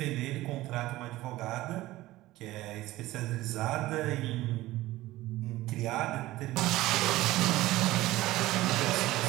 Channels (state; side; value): quieter; left; 17.2 dB